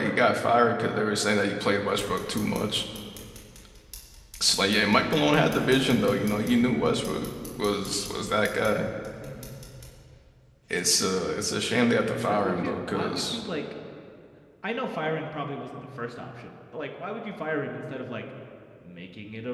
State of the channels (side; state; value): both; identical; correlation 1.00